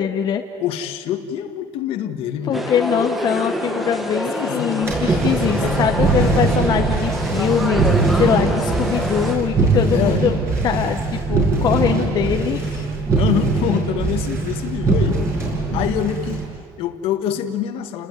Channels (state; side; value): normal; both; correlation 0.52